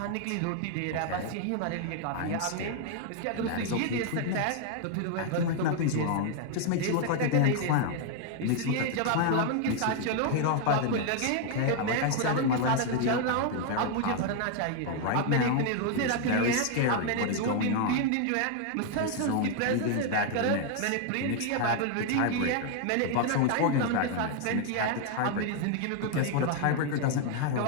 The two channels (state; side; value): different; both; correlation 0.00